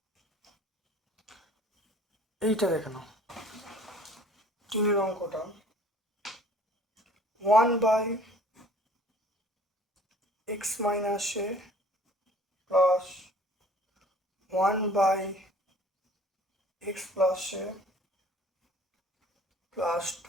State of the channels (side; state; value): both; normal; correlation 0.51